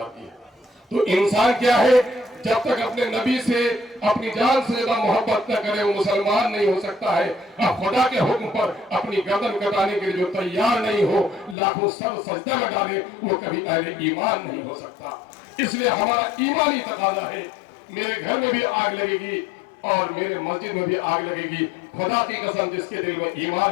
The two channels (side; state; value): right; drops out; at 11.6 s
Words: है। तो इंसान क्या है, जब तक अपने नबी से अपनी जान से ज्यादा मोहब्बत न करे वो मुसलमान नहीं हो सकता है। अब खुदा के हुक्म पर अपनी गर्दन कटाने के लिए जो तैयार नहीं हो, लाखों सर सजदा में डाले, वो कभी अहले ईमान नहीं हो सकता। इसलिए हमारा ईमानी तकाजा है। मेरे घर में भी आग लगेगी और मेरे मस्जिद में भी आग लगेगी। खुदा की कसम, जिसके दिल में